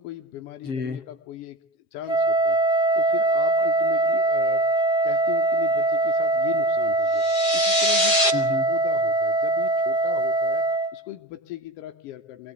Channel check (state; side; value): late; right; 7.4 ms